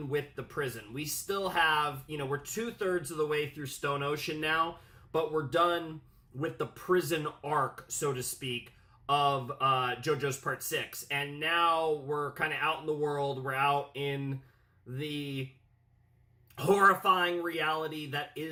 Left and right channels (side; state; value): both; identical; correlation 1.00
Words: with the prison. We still have, we're 2/3 of the way through Stone Ocean now, but we're done with the prison arc, so to speak, of JoJo's Part 6. And now we're kind of out in the world. We're out in the horrifying reality that